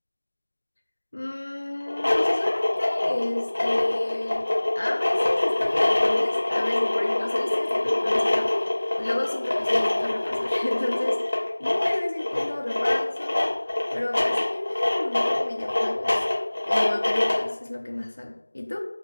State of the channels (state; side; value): inverted; both; correlation -1.00